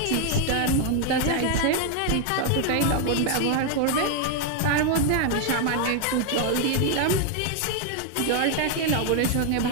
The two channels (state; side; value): different; both; correlation 0.01